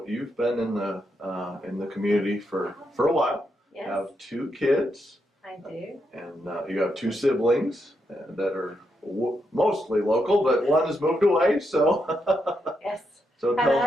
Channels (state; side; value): normal; both; correlation 0.82